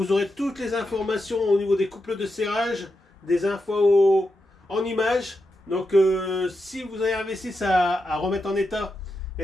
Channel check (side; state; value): both; normal; correlation 0.87